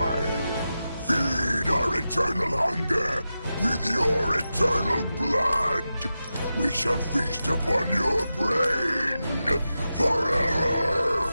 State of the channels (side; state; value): both; inverted; correlation -0.91